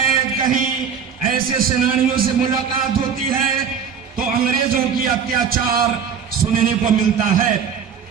कहीं ऐसे सेनानियों से मुलाकात होती है तो अंग्रेजों की अत्याचार सुनने को मिलता है।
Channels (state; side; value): quieter; left; 6.9 dB